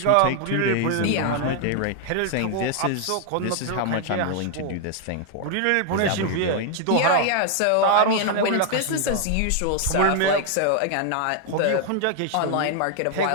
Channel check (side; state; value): both; different; correlation 0.00